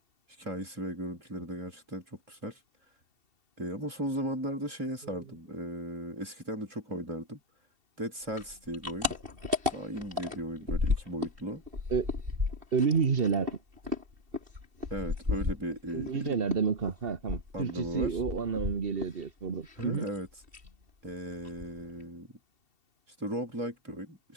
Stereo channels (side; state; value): left; late; 2.7 ms